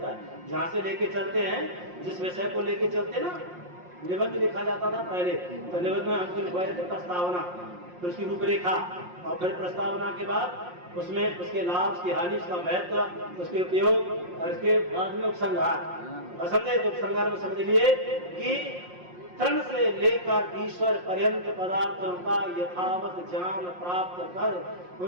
है। जहां से लेके चलते हैं, जिस विषय को लेके चलते ना, निबंध लिखा जाता था पहले, तो निबंध में हमको लिखवाया था प्रस्तावना, फिर उसकी रूपरेखा, और फिर प्रस्तावना के बाद उसमें उसके लाभ, उसकी हानि, उसका महत्व, उसके उपयोग, और इसके बाद में उपसंहार। समझे तो उपसंहार में समझ लिए कि तृण से लेकर ईश्वर पर्यंत पदार्थों का यथावत ज्ञान प्राप्त कर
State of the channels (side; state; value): left; late; 5.6 ms